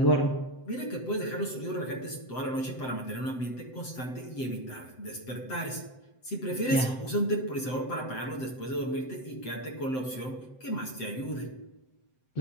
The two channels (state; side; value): late; right; 7.8 ms